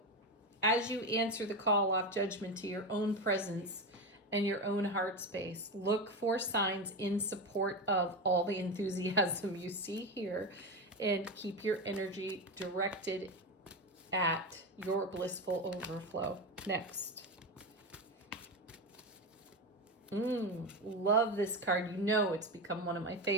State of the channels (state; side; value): normal; both; correlation 0.18